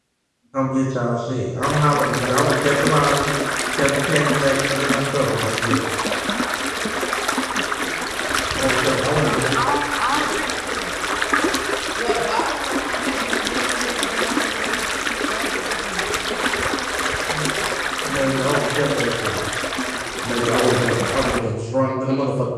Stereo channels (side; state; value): both; identical; correlation 1.00